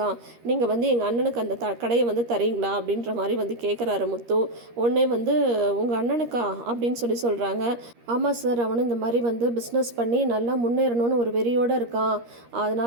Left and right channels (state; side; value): late; left; 13 ms